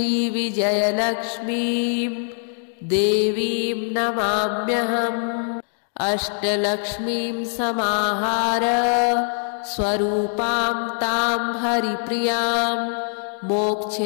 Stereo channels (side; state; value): right; silent; 64 dB below the other